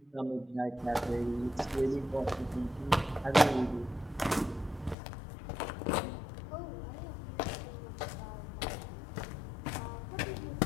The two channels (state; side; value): drops out; right; at 5.0 s